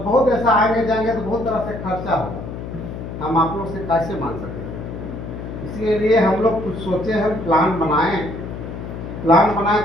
ऐसा आएंगे जाएंगे तो बहुत तरह से खर्चा होगा, हम आप लोग से कैसे मान सकेंगे। इसीलिए हम लोग कुछ सोचे, हम प्लान बनाएं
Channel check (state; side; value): noise; left; hum, 9 dB below the sound